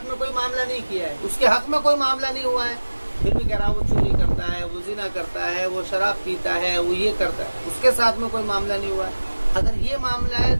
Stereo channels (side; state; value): both; inverted; correlation -1.00